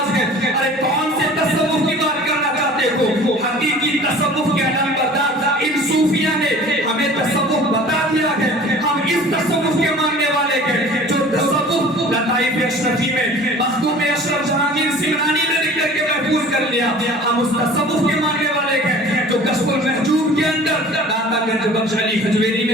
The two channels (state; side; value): normal; both; correlation 0.45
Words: ہے۔ ارے کون سے تصوف کی بات کرنا چاہتے ہو؟ حقیقی تصوف کے علم بردار ان صوفیہ نے ہمیں تصوف بتا دیا ہے، ہم اس تصوف کے ماننے والے ہیں جو تصوف لطائف اشرفی میں مخدوم اشرف جہانگیر سمنانی نے لکھ کر کے محفوظ کر لیا، ہم اس تصوف کے ماننے والے ہیں جو کشف المحجوب کے اندر داتا گنج بخش علی حجویری